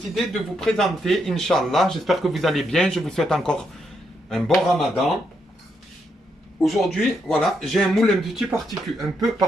de vous présenter, Inch'Allah, j'espère que vous allez bien, je vous souhaite encore un bon ramadan. Aujourd'hui, voilà, j'ai un moule un peu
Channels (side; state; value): both; normal; correlation 0.79